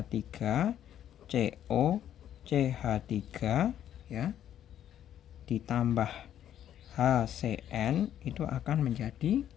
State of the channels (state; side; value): quieter; right; 10.7 dB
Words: CO CH3 ya, ditambah HCN itu akan menjadi